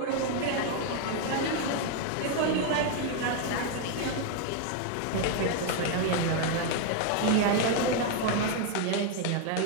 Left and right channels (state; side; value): different; both; correlation 0.01